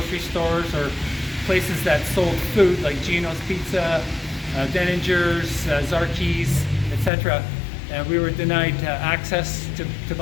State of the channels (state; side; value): drops out; right; at 7.1 s